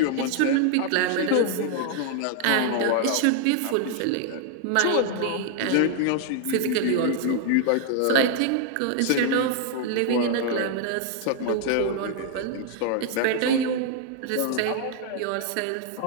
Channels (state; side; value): different; both; correlation 0.00